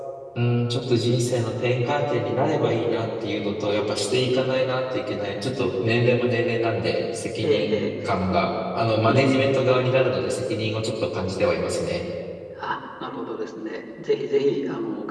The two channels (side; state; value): both; identical; correlation 1.00